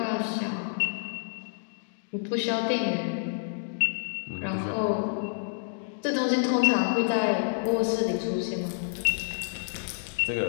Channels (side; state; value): right; silent; digital silence